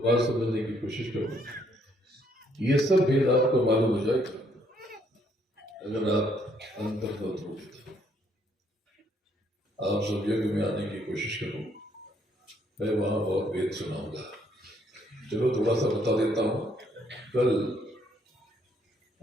समझने की कोशिश करो। ये सब भेद आपको मालूम हो जाएगा अगर आप अंतर्गत हो तो। आप सब यज्ञ में आने की कोशिश करो, मैं वहां बहुत भेद सुनाऊंगा। चलो थोड़ा सा बता देता हूं। कल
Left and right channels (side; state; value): both; normal; correlation 0.69